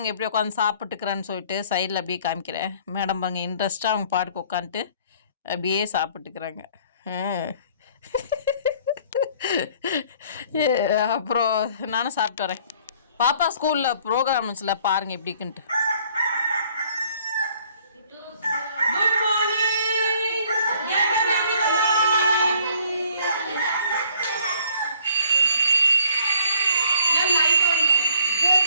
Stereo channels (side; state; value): both; inverted; correlation -0.59